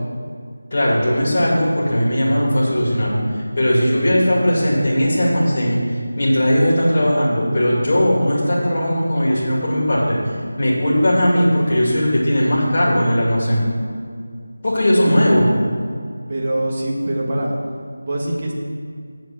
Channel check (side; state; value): both; inverted; correlation -0.96